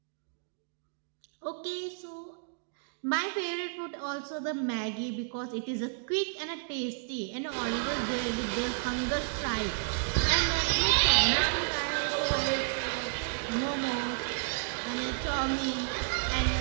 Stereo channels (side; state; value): left; silent; digital silence